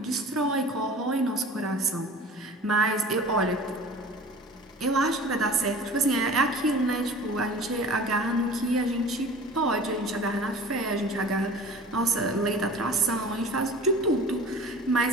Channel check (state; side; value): normal; both; correlation 0.41